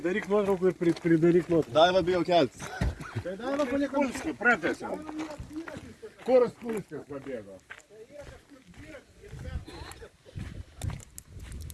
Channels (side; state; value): both; identical; correlation 1.00